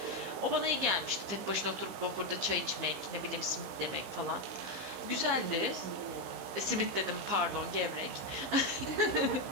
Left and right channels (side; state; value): left; late; 15 ms